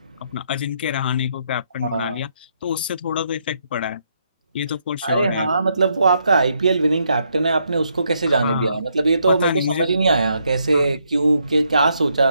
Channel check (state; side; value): inverted; both; correlation -0.75